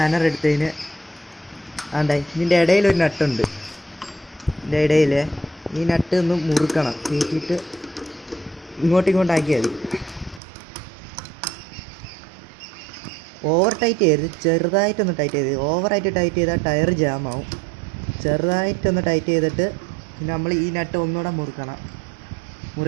എടുത്തതിന് ഇതിൻ്റെ ഇടയിലൊരു നട്ടുണ്ട്. ഇതിൻ്റെ ഇടയിൽ ഈ നട്ട് ഒന്ന് മുറുക്കണം, കയറ്റിയിട്ട് ഇങ്ങോട്ടാക്കിയാൽ മതി. ഓവർ ടൈറ്റ് ചെയ്ത് ചെറുതായിട്ടൊന്ന് ടൈറ്റ് ചെയ്ത്, ഓവറായിട്ട് ടൈറ്റ് ചെയ്താൽ ടയർ ജാമാവും. ചെറുതായിട്ടൊന്ന് ടൈറ്റ് ചെയ്തിട്ട് പിന്നെ നമ്മൾ ഈ നട്ട് ഒന്നുകൂടെ മുറുക്കണം.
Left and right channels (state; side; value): drops out; left; at 10.4 s